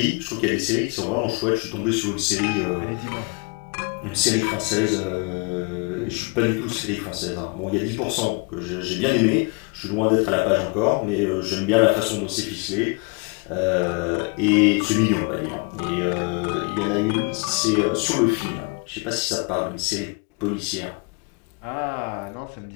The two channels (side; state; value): right; quieter; 32.5 dB